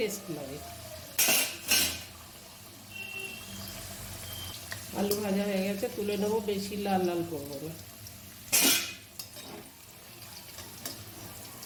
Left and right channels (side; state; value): both; identical; correlation 1.00